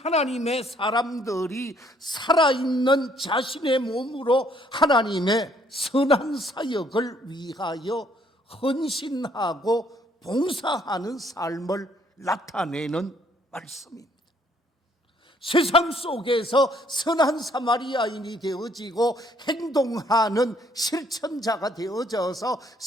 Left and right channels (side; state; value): both; normal; correlation 0.65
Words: 사람들이 살아있는 자신의 몸으로 하나님의 선한 사역을 위하여 헌신하고 봉사하는 삶을 나타내는 말씀입니다. 세상 속에서 선한 사마리아인이 되어지고 행동하는 실천자가 되어져서